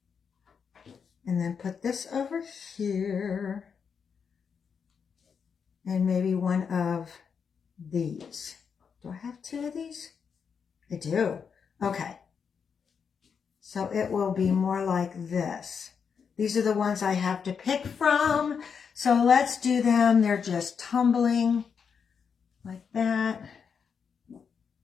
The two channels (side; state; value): right; quieter; 6.5 dB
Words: and then put this over here, and maybe one of these. Do I have two of these? I do. Okay. So it will be more like this. These are the ones I have to pick from. So let's do them. They're just tumbling like that.